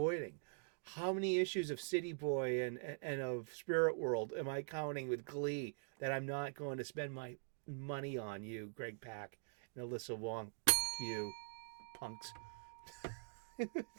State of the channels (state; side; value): silent; left; digital silence